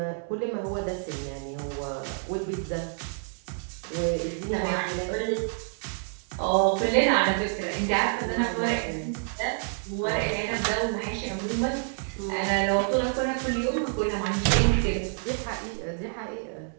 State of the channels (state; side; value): silent; left; digital silence